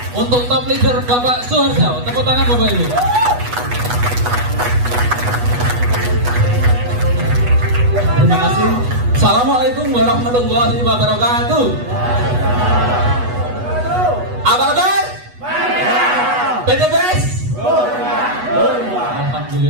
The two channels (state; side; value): late; left; 8.2 ms